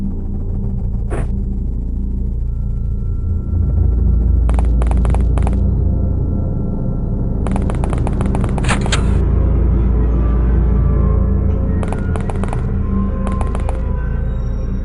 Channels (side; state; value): both; identical; correlation 1.00